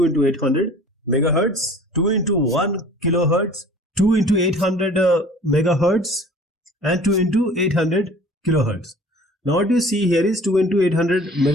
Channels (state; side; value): normal; both; correlation 0.47